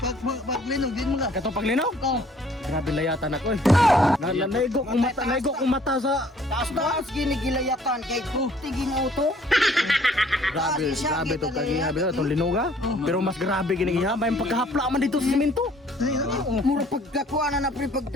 Pag linog din mo nga. katong paglinog? Oh. Grabe layatan ako eh. Naigo kong mata sa Taas ginigilayatan kay tiging auto. grabe to kagihabi to itong linuga. Pero mas grabe ginigihabay yung pagkahapla man dito sa simento. Mura pagkakuha na pre pag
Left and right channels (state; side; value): normal; both; correlation 0.58